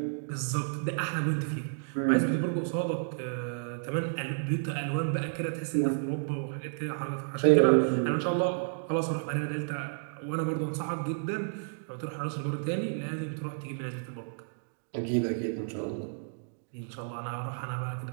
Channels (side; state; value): left; silent; digital silence